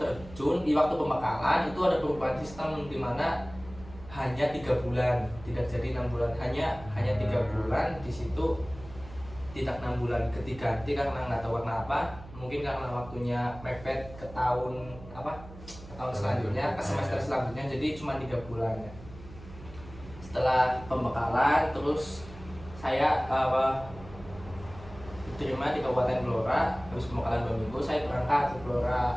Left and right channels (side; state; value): right; noise; hum, 17 dB below the sound